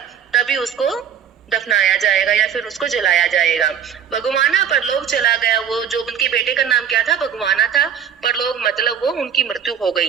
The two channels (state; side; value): quieter; left; 8.3 dB